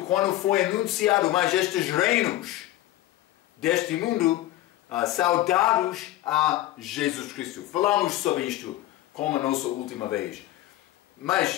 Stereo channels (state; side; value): quieter; right; 15.3 dB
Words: foi anunciado mais estes reinos deste mundo, saudados a Jesus Cristo. Falamos sobre isto como a nossa última vez.